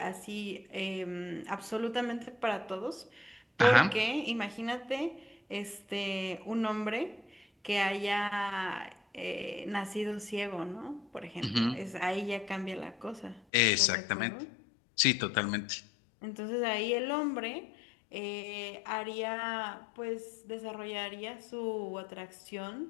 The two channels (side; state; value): right; drops out; at 13.4 s